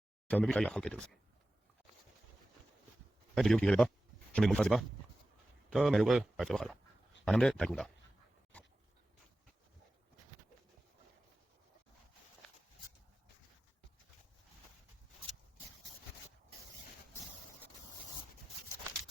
Chciałbym być jak Kettles. Będzie wielki ryba, czy my mój fazyba? To merugę, a to chala. A nam de tajkunda.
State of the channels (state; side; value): normal; both; correlation 0.95